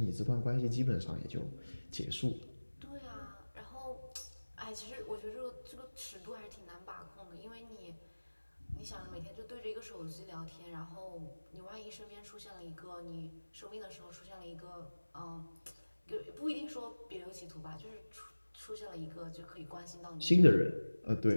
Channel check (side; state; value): both; inverted; correlation -1.00